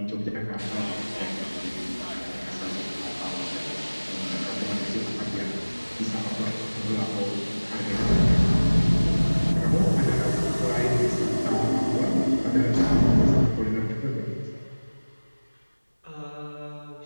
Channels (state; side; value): inverted; both; correlation -1.00